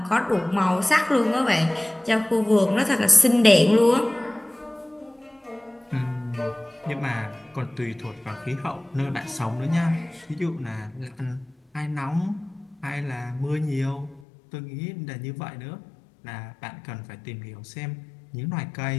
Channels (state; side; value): drops out; right; at 14.2 s